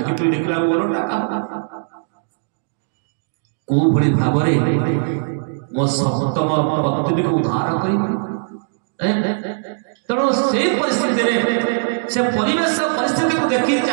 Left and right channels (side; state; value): left; silent; digital silence